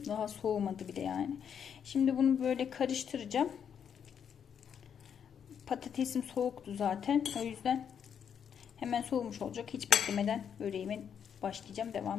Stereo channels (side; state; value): right; quieter; 7.9 dB